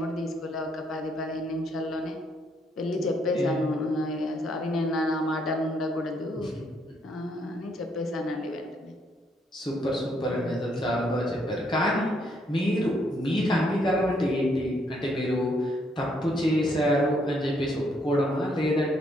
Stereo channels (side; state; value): both; normal; correlation 0.72